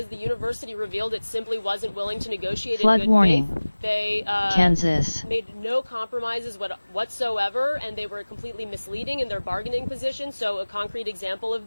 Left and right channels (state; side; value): inverted; both; correlation -1.00